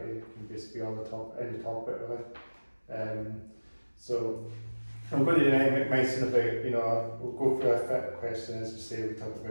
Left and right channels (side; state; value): both; inverted; correlation -1.00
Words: can just be on any topic really. So I'm going to mention about, we'll go through a fit question as we say, we talk